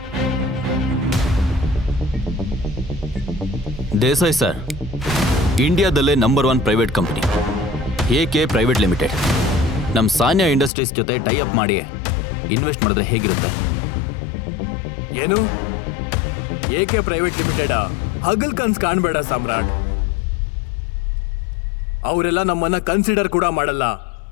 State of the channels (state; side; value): drops out; right; at 10.7 s